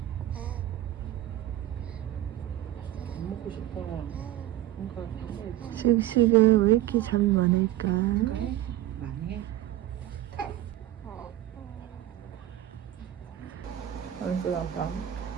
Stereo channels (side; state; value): left; quieter; 13.5 dB